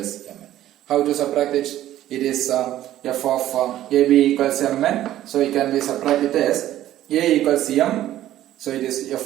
mn. How to subtract it? It is f of ab equals mn. So it can be subtracted as a equals m. So it is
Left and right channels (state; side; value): quieter; left; 13.2 dB